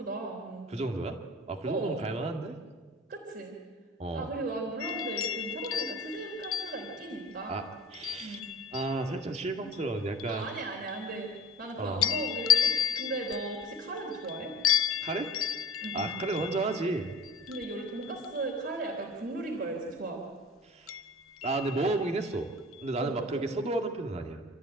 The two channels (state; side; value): normal; both; correlation 0.39